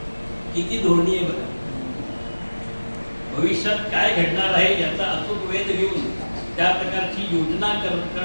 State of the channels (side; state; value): both; inverted; correlation -1.00